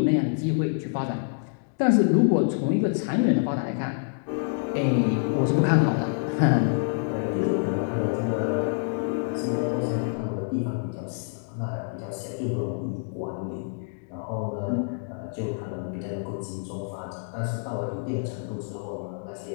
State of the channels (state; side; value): silent; right; digital silence